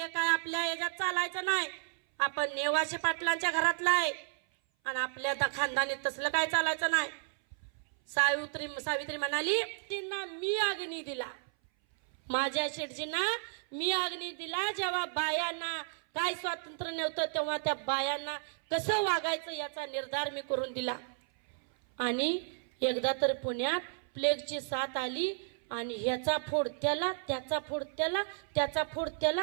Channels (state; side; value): silent; left; 56 dB below the other